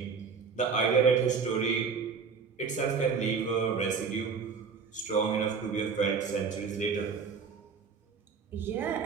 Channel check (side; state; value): left; quieter; 5.6 dB